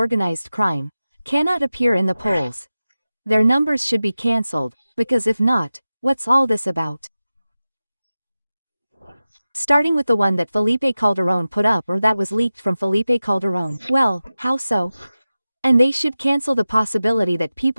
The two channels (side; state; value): both; inverted; correlation -0.95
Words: crime, cannot appear in the polls. Their numbers should be cancelled, because if not, what's all this about? Starting with the one that Felipe Calderón put up or that was leaked from Felipe Calderón. Well, how so? And they should cancel the possibility that